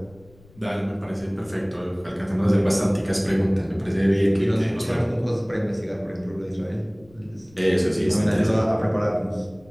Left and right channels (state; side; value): noise; left; rumble, 26 dB below the sound